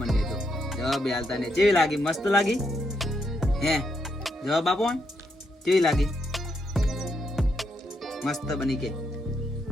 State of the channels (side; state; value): both; normal; correlation 0.79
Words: તો જવાબ હાલતા ને. કેવી લાગી? મસ્ત લાગી હે? જવાબ આપો. કેવી લાગી? મસ્ત બની કે